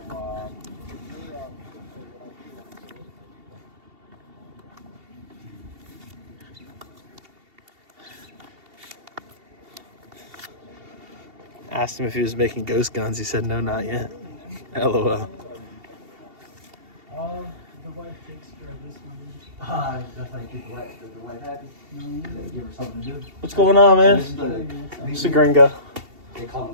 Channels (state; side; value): late; left; 2.7 ms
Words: Asked him if he was making ghost guns. He said, no, not yet. LOL. The wife takes care of this one. That's how you keep the wife happy. Give her something to do. What's going on, man? It's the gringo. They call